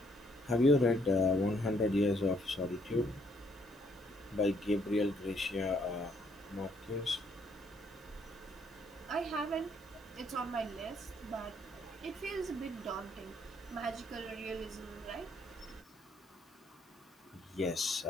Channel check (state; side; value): normal; both; correlation 0.68